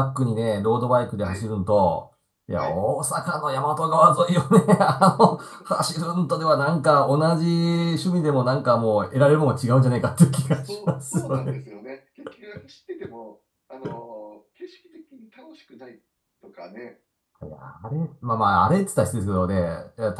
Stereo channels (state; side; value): identical; both; correlation 1.00